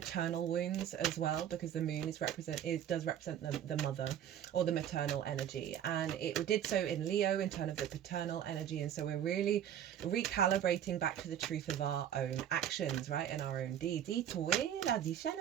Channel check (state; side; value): quieter; left; 10.2 dB